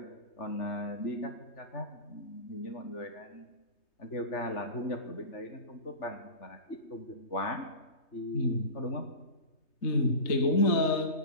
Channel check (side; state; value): right; late; 3.3 ms